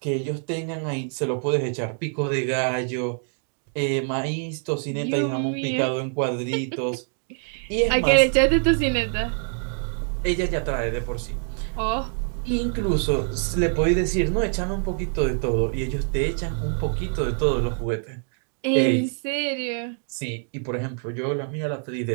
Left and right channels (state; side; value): silent; left; 55 dB below the other